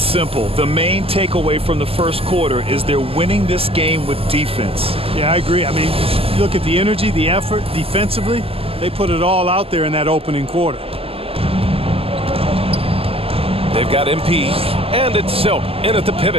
simple. The main takeaway from the first quarter is they're winning this game with defense. Yeah, I agree. I mean, look at the energy, the effort defensively. They put it all out there in that opening quarter. They've got MP, and it's Silk in at the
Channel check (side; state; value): left; late; 0.28 ms